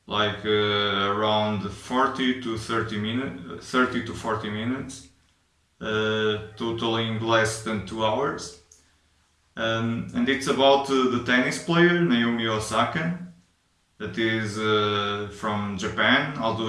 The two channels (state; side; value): identical; both; correlation 1.00